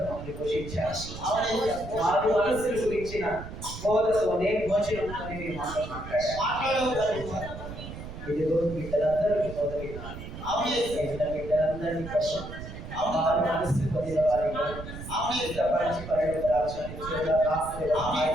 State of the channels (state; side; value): noise; right; rumble, 10 dB below the sound